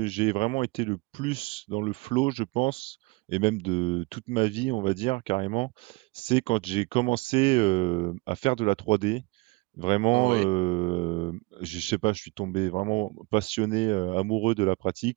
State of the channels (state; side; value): quieter; left; 24.4 dB